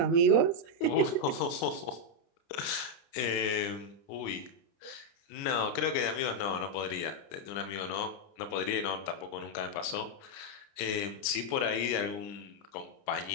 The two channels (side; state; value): right; late; 30 ms